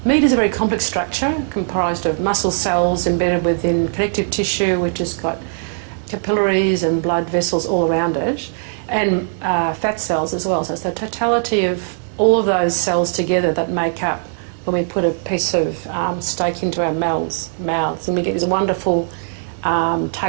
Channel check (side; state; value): left; silent; digital silence